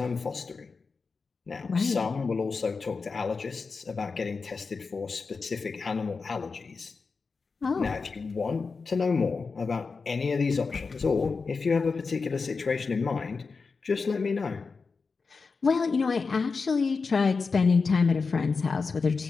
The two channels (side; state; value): right; quieter; 4.6 dB